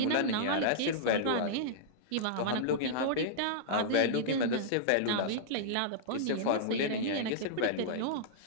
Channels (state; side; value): different; both; correlation -0.02